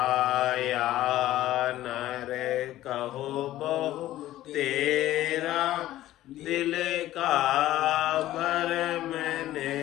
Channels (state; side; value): quieter; right; 14.6 dB